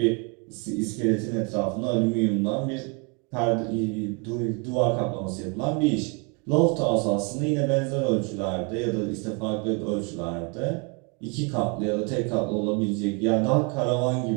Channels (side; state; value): left; quieter; 33.6 dB